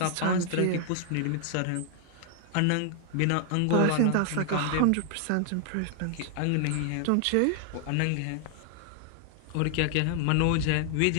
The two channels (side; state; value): both; different; correlation 0.00